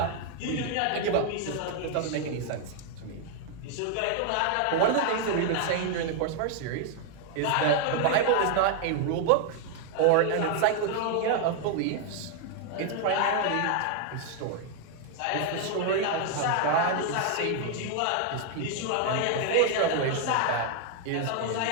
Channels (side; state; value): both; different; correlation 0.00